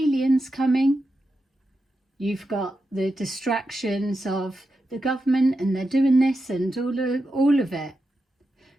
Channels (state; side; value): normal; both; correlation 0.88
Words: coming? You've got the distractions of the government and they're doing this and all of it.